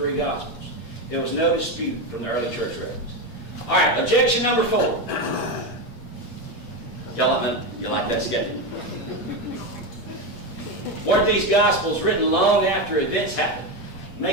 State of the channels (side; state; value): right; late; 8.6 ms